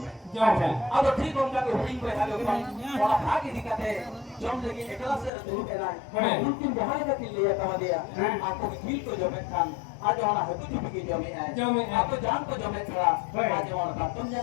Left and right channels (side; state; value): right; drops out; at 5.3 s